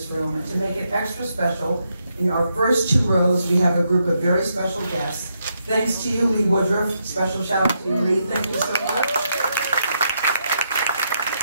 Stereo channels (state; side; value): inverted; both; correlation -0.80